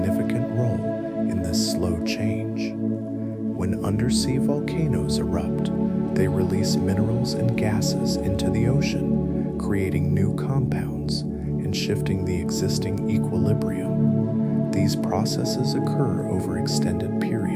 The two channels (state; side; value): identical; both; correlation 1.00